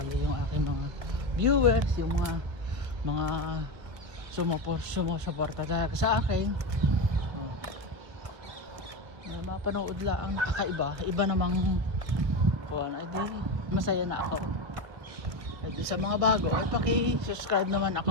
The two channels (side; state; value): left; late; 1.5 ms